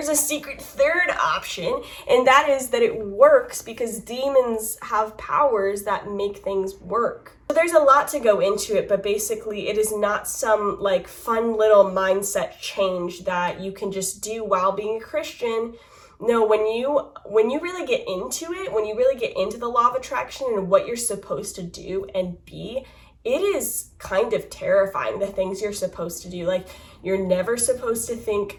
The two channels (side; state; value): both; identical; correlation 1.00